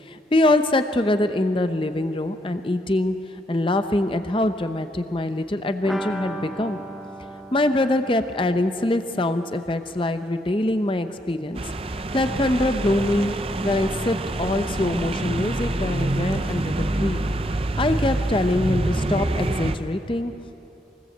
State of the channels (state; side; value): normal; both; correlation 0.75